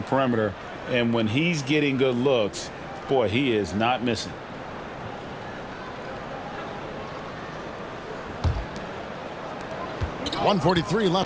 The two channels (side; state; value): both; identical; correlation 1.00